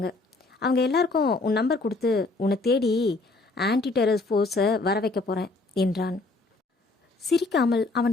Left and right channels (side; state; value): right; quieter; 3.3 dB